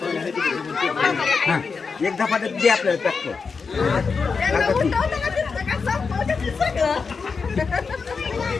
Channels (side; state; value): right; quieter; 5.1 dB